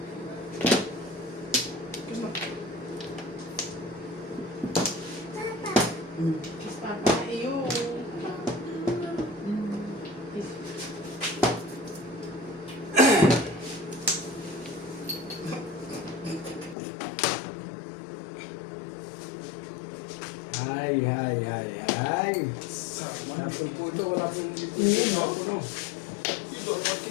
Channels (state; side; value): drops out; right; at 16.8 s